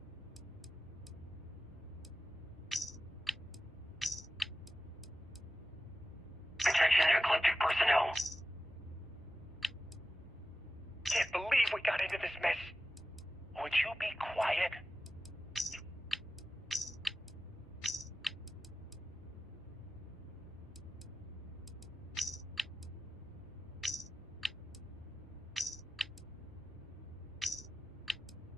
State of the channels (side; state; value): both; normal; correlation 0.94